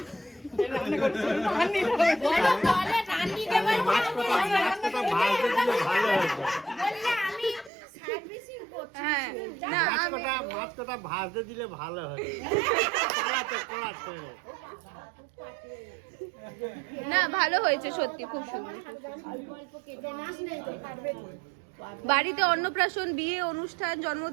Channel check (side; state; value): left; drops out; at 7.7 s